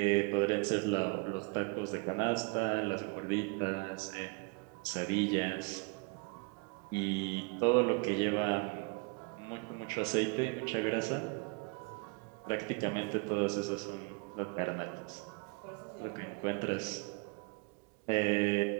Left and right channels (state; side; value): quieter; left; 32.1 dB